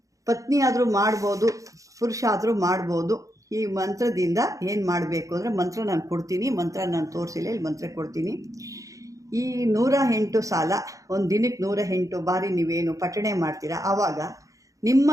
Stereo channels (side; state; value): left; late; 0.16 ms